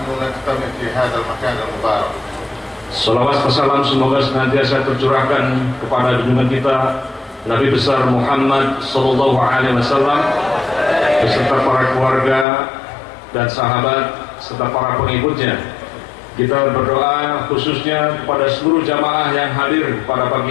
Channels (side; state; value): right; drops out; at 12.5 s